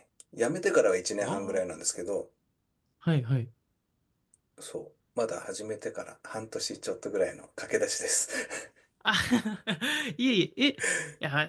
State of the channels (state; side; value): identical; both; correlation 1.00